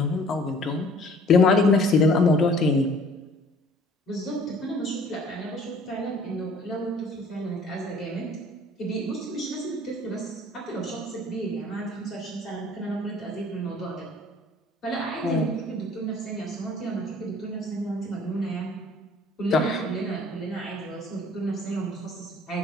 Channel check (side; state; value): both; normal; correlation 0.53